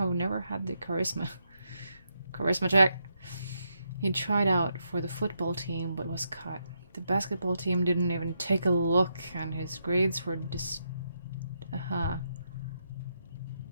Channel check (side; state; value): both; inverted; correlation -0.81